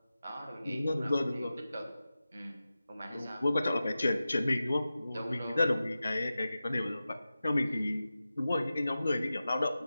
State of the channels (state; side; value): inverted; both; correlation -0.94